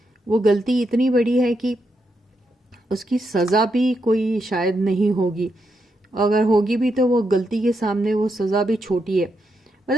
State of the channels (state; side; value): normal; both; correlation 0.82